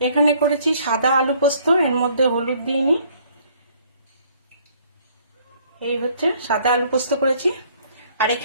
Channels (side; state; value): both; inverted; correlation -0.61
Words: এখানে করেছি সাদা আলু পোস্ত, এর মধ্যে হলুদ দিইনি। এই হচ্ছে সাদা আলু পোস্ত করেছি। আর